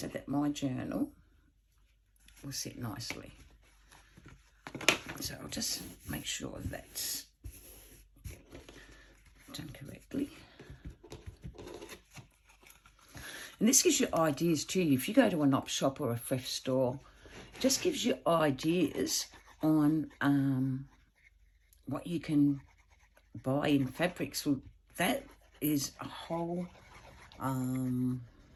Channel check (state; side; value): identical; both; correlation 1.00